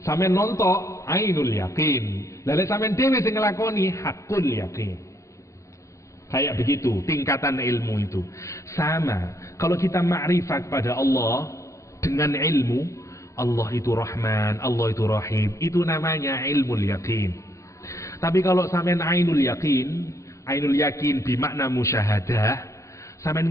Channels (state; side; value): late; right; 0.15 ms